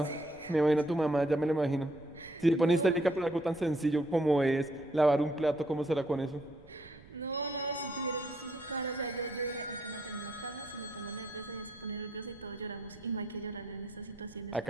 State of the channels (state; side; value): noise; right; rumble, 22 dB below the sound